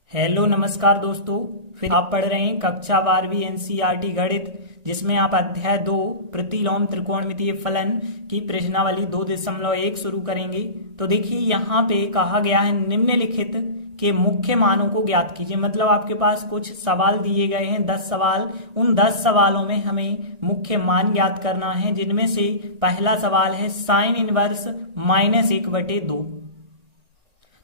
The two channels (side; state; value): left; late; 1.6 ms